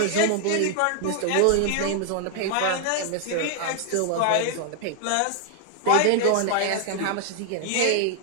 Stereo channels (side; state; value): both; different; correlation 0.00